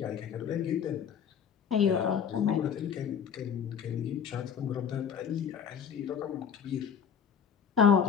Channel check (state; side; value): quieter; right; 7.5 dB